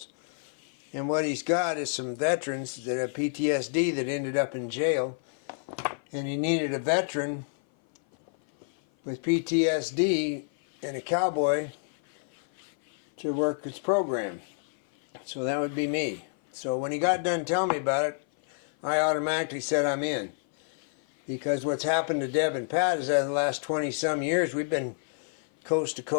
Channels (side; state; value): right; silent; 56 dB below the other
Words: And what he's got is some veterans that have PTSD that ended up in jail. And he needed a veteran with PTSD and a cowboy to work his program. So that would be me. So when he got done telling me about it, I automatically said I'm in. Because what's happened to Deb and Pat is that in the last 20-some years, we've been coast to